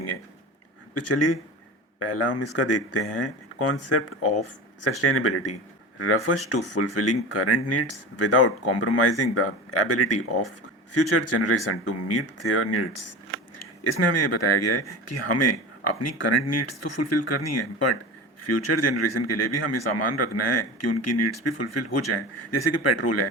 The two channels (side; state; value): both; normal; correlation 0.30